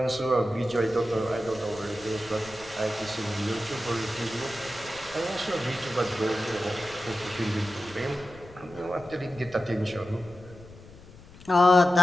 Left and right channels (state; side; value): noise; left; rumble, 20 dB below the sound